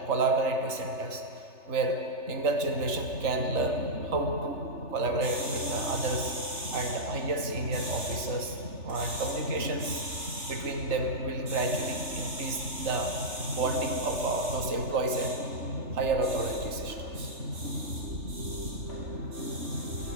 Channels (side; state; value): left; late; 3.3 ms